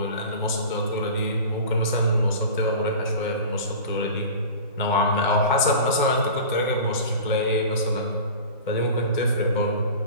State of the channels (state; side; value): inverted; both; correlation -0.36